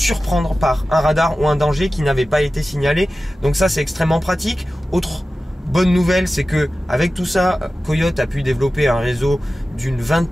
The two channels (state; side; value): normal; both; correlation 0.95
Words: par un radar ou un danger qui n'avait pas été signalé. Donc ça, c'est extrêmement pratique. Autre bonne nouvelle, c'est que avec tout ça, Coyote a pu développer un réseau d'une